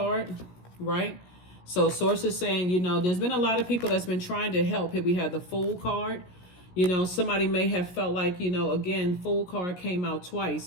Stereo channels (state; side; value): late; right; 17 ms